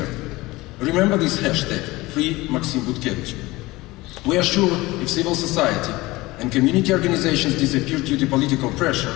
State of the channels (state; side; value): quieter; right; 20.4 dB